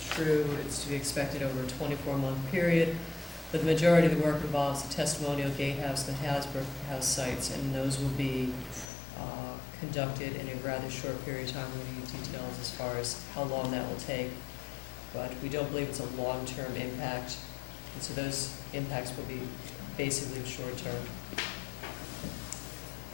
true. It's to be expected over a 24-month period, but the majority of the work involves the testimonial gatehouse, the Hasbrook House sites, and those will be conducted in a rather short period of time. We're going to get details as far as how long that will take, but we don't believe it's a long-term impact, and so those impacts will be basically short-term.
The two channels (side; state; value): right; drops out; at 8.8 s